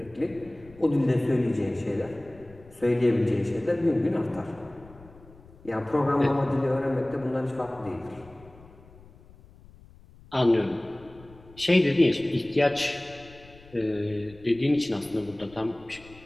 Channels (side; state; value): left; noise; rumble, 23 dB below the sound